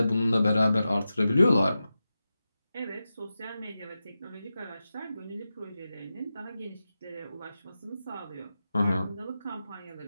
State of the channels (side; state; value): both; inverted; correlation -0.92